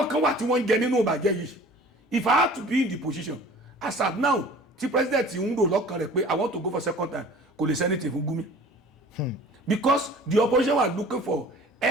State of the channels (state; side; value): normal; both; correlation 0.46